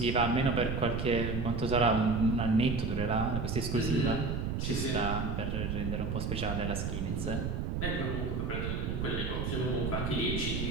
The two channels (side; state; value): right; noise; rumble, 1 dB below the sound